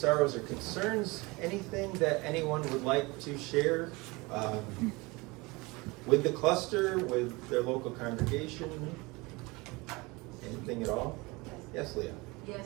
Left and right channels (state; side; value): quieter; left; 24.4 dB